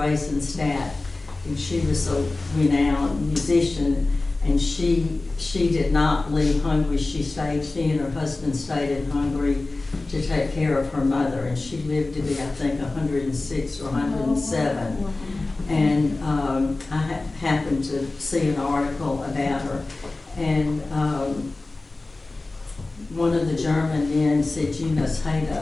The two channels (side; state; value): right; quieter; 3.2 dB